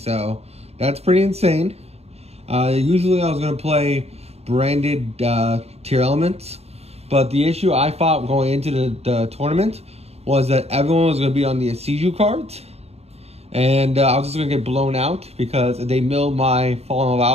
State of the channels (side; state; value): left; late; 0.30 ms